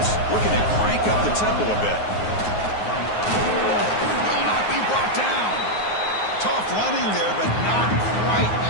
looking to crank up the tempo a bit. Will not be brought down. Tough running there, but not quite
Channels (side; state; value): right; late; 9.5 ms